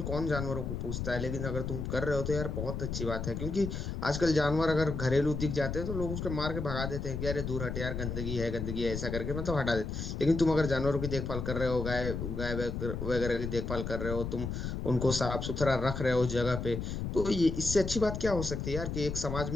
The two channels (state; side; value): noise; left; rumble, 4 dB below the sound